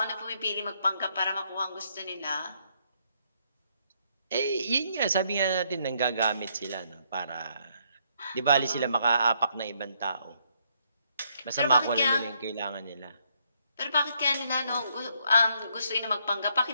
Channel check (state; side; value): inverted; both; correlation -0.72